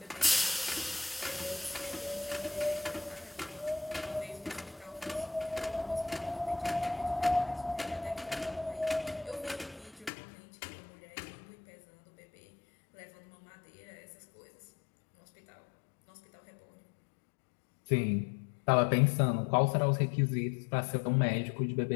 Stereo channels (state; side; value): drops out; right; at 10.1 s